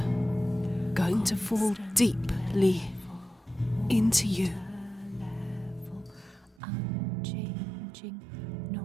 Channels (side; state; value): left; drops out; at 6.6 s